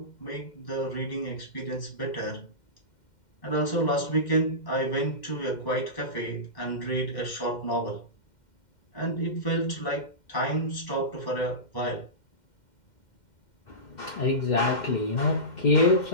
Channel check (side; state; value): right; late; 2.1 ms